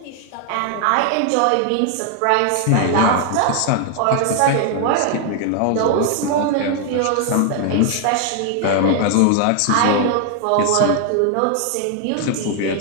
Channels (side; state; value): both; different; correlation 0.00